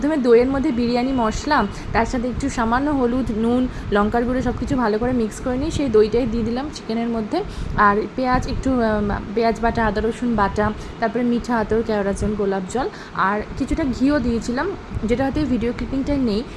দইয়ের মধ্যে বিরিয়ানি মশলা, তার সাথে একটু সামান্য হলুদ, নুন, লঙ্কার গুঁড়ো সব কিছু ভালো করে মিক্স করে নিই। সেই দইটাই দিয়ে দিলাম চিকেনের মধ্যে। আর পেঁয়াজ, একটু পেঁয়াজ বাটা, আদা রসুন বাটা, তারপরে মিঠা আতর, কেওড়া জল, গোলাপ জল, আর কিছুটা ঘিও দিয়েছিলাম, যেটা হয়তো ভিডিও ক্লিপিংটা নেই।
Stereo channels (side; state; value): both; identical; correlation 1.00